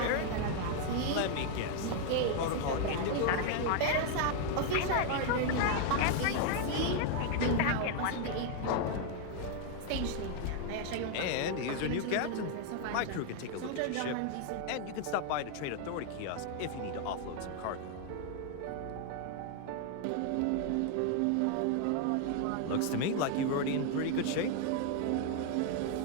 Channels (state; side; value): different; both; correlation 0.00